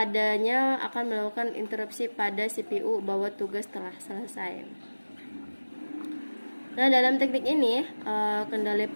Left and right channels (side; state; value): both; inverted; correlation -1.00